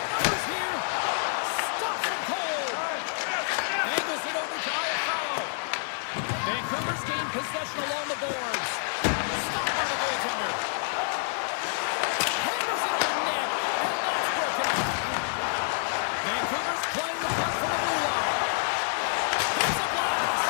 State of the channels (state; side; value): silent; right; digital silence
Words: here. Stops him cold. Angles it over to Buffallo. Vancouver's gained possession along the boards. Stopped by the goaltender. Hammers it on net. And that's broken up. Vancouver's playing the puck from the blue line. There's a blast.